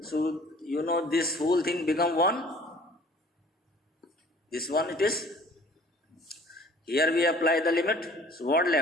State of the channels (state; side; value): normal; both; correlation 0.51